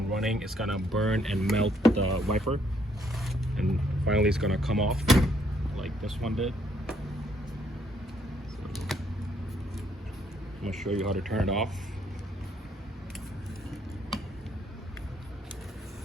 running, it's going to burn and melt the wiper. And finally it's going to come off, like this one did. So I'm going to show you how to turn it off.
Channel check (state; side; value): normal; both; correlation 0.69